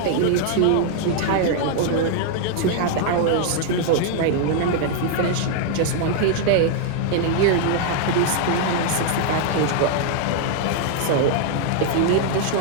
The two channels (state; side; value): different; both; correlation 0.00